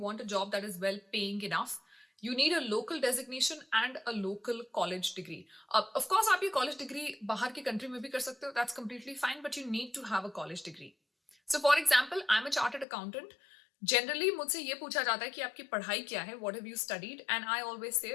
a job that is well paying enough, you need a local designation and a local college degree. Of course, आप ये college degree बाहर के country में भी कर सकते हो. That's completely fine, but you need to have a college degree. So, for example, I'm a chartered accountant. Generally, मुझसे ये पूछा जाता है कि आपकी पढ़ाई क्या है? What have you studied? And I always say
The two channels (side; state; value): right; drops out; at 12.9 s